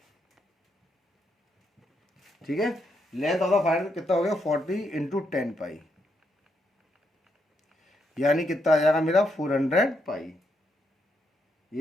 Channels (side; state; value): both; normal; correlation 0.79